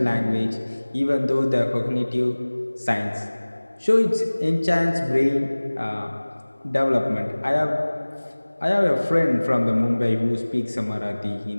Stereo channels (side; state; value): both; inverted; correlation -1.00